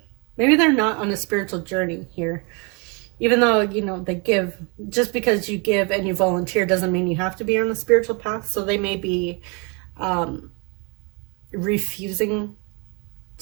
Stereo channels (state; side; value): quieter; left; 32.6 dB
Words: maybe they're not on a spiritual journey here. Even though, you know, they give, just because you give and you volunteer doesn't mean you have to be on the spiritual path. So they may be refusing